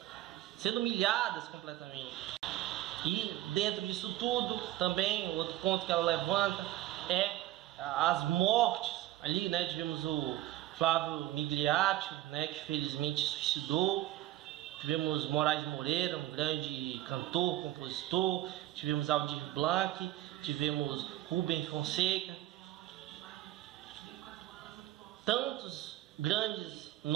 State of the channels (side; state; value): left; quieter; 15.0 dB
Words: sendo humilhadas completamente. E dentro disso tudo, também, outro ponto que ela levanta é as mortes. Ali, né, tivemos o Flávio Migliaccio, né, que felizmente se suicidou. Tivemos Moraes Moreira, um grande cantor, compositor. Tivemos Aldir Blanc, tivemos Rubem Fonseca. Tantos grandes